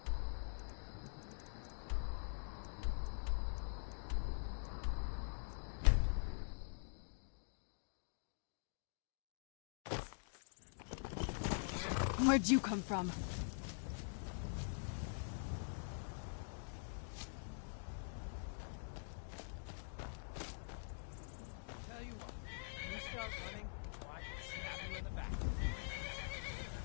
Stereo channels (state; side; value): silent; right; digital silence